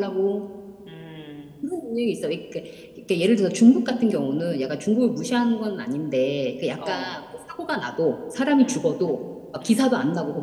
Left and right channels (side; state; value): both; identical; correlation 1.00